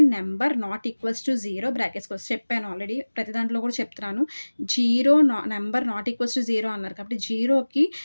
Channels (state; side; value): inverted; both; correlation -1.00